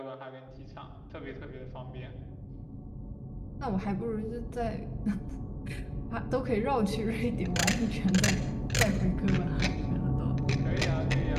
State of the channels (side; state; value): both; identical; correlation 1.00